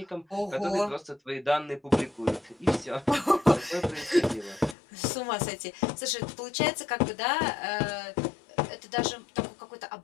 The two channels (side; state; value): right; drops out; at 4.8 s